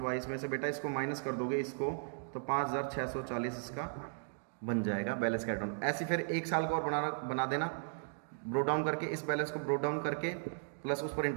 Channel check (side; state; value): left; silent; digital silence